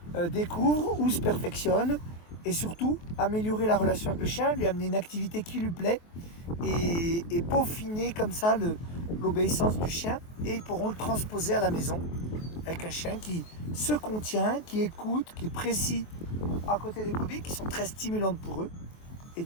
découvre ou se perfectionne et surtout améliorer la relation avec le chien, lui amener une activité qui lui plaît et peaufiner comme ça l'obéissance du chien, et ils pourront le transposer à la maison avec un chien qui se contient, qui écoute, qui est précis à côté des brebis, qui sont très stimulantes pour eux, et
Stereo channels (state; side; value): late; right; 23 ms